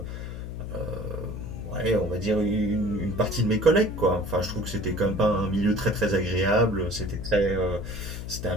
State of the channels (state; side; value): noise; left; hum, 7 dB below the sound